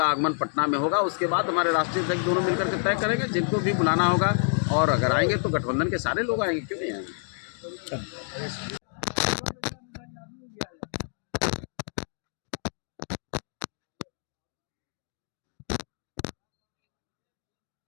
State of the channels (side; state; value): right; silent; digital silence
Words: आगमन पटना में होगा। उसके बाद हमारे राष्ट्रीय अध्यक्ष दोनों मिलकर के तय करेंगे जिनको भी बुलाना होगा और अगर आएंगे तो गठबंधन के सारे लोग आएंगे, क्यों नहीं आएंगे।